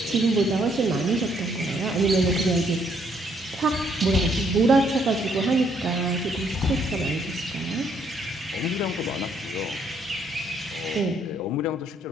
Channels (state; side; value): normal; both; correlation 0.69